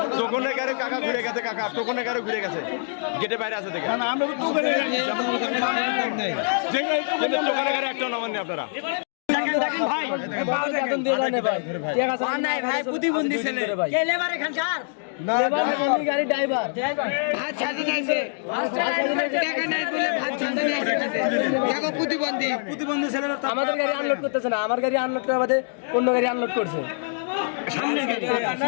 টোকনে গাড়ি কাকা ঘুরে গেছে কাকা টোকনে গাড়ি ঘুরে গেছে গেটে বাইরে আছে দেখেন না আমরা তো টোকেনে গেছি যে গাড়ি কিন্তু টোকনে গাড়ি একটা নামান নেই আপনারা দেখেন ভাই বেতন দিয়ে জানে ভাই ঠিক আছে নাই ভাই প্রতিবন্ধী ছেলে কে লেবার এখানকার লেবার মানে গাড়ি ড্রাইভার ভাত ছাড়ি নাইছে টাকা নাই বলে ভাত ছাড়তে নাইছে দেখো প্রতিবন্ধী ছেলেরা আমাদের গাড়ি আনলোড করতেছে না আমার গাড়ি আনলোড করা বাদে অন্য গাড়ি আনলোড করছে সামনে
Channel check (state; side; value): silent; right; digital silence